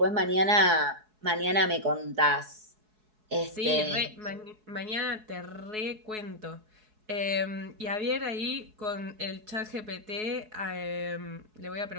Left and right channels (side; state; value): left; late; 4.7 ms